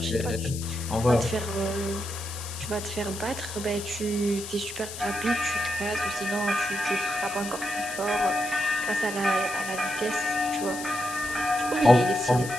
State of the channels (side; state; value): left; noise; hiss, 10 dB below the sound